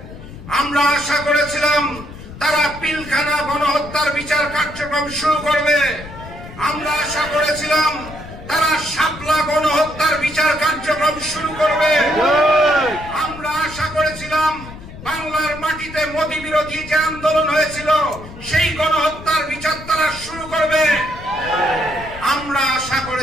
আমরা আশা করেছিলাম তারা পিলখানা গণহত্যার বিচার কার্যক্রম শুরু করবে। আমরা আশা করেছিলাম তারা শাপলা গণহত্যার বিচার কার্যক্রম শুরু করবে। আমরা আশা করেছিলাম বাংলার মাটিতে মোদী বিরোধী যে আন্দোলন হয়েছিল সেই গণহত্যার বিচার তারা শুরু করবে। আমরা আশা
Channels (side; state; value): left; noise; rumble, 15 dB below the sound